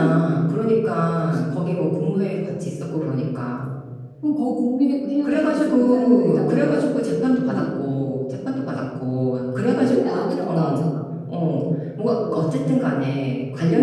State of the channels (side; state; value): both; identical; correlation 1.00